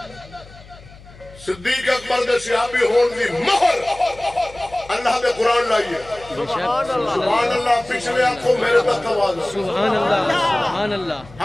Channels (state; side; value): noise; left; hum, 21 dB below the sound